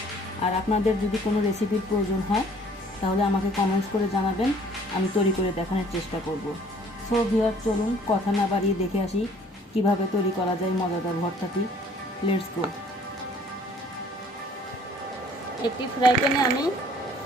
আর আপনাদের যদি কোনো রেসিপির প্রয়োজন হয় তাহলে আমাকে কমেন্টস করে জানাবেন, আমি তৈরি করে দেখানোর চেষ্টা করব। সো ভিউয়ার, চলুন কথা না বাড়িয়ে দেখে আসি কিভাবে তৈরি করা যায় মজাদার ভর্তাটি। Let's go. একটি ফ্রাই প্যানে আমি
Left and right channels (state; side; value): normal; both; correlation 0.56